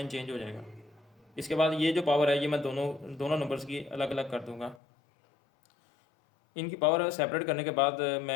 चेंज हो जाएगा। इसके बाद ये जो पावर है ये मैं दोनों नंबर्स की अलग अलग कर दूँगा। इनकी पावर सेपरेट करने के बाद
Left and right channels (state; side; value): drops out; right; at 4.8 s